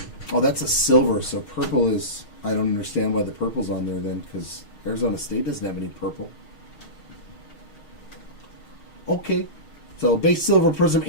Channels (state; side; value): late; right; 6.4 ms